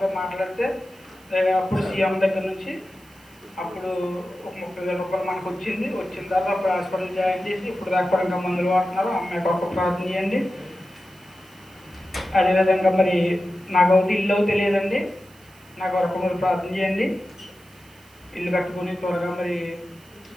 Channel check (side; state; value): right; noise; hiss, 27 dB below the sound